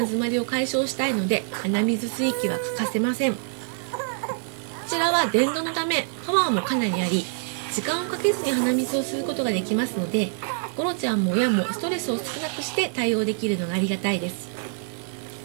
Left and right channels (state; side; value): silent; left; digital silence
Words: まりを解消したいので鼻水吸い機は欠かせません。こちらは電動のためパワーもかなりあり、時間をかけずに鼻水を吸うことができますので、ゴロちゃんも親もストレスを少なくして対応できるのがありがたいです。